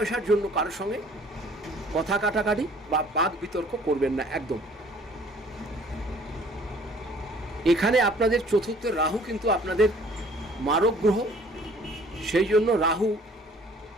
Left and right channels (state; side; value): normal; both; correlation 0.55